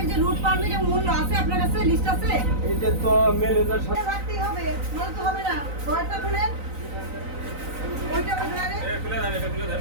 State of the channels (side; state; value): left; late; 3.9 ms